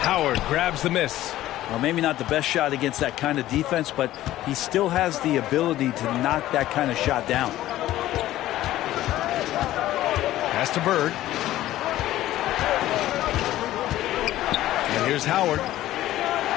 Howard grabs the miss. Well, maybe not the best shot against that kind of defense, but he still has the ability to knock that kind of shot down. Pass to Bird. And here's Howard.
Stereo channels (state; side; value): quieter; right; 14.5 dB